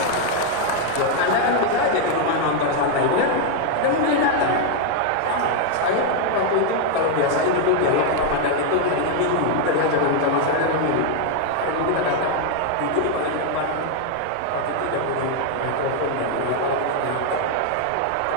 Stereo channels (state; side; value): different; both; correlation 0.00